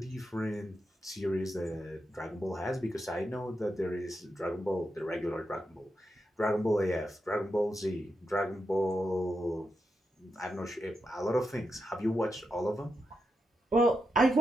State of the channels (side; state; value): both; normal; correlation 0.85